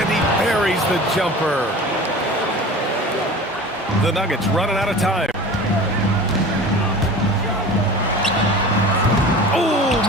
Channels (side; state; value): both; normal; correlation 0.38